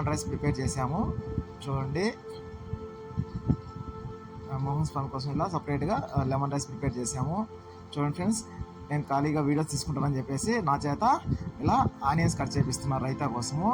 రైస్ ప్రిపేర్ చేశాము. చూడండి మోహన్ స్వామి కోసం ఇలా సపరేట్గా లెమన్ రైస్ ప్రిపేర్ చేశాము. చూడండి ఫ్రెండ్స్ నేను ఖాళీగా వీడియోస్ తీసుకుంటానని చెప్పేసి నా చేత ఇలా ఆనియన్స్ కట్ చేపిస్తున్నారు రైతా కోసము.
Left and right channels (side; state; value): both; identical; correlation 1.00